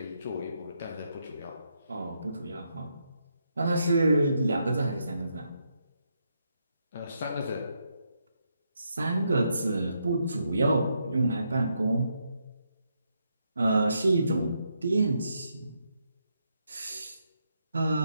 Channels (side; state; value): both; inverted; correlation -0.79